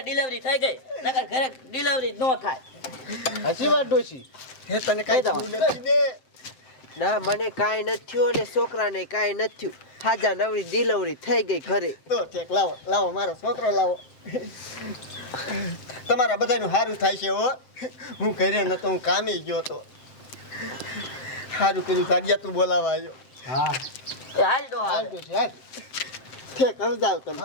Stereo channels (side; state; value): right; late; 7.7 ms